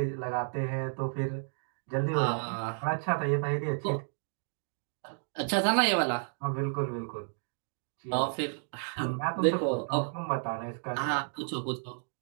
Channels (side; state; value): left; silent; 56 dB below the other